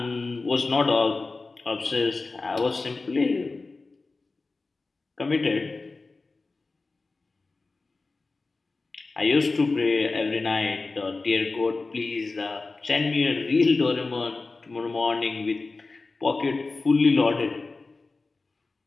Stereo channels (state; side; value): quieter; right; 3.7 dB